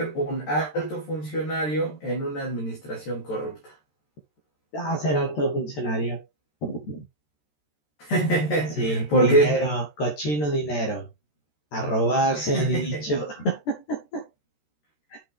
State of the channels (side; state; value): right; late; 13 ms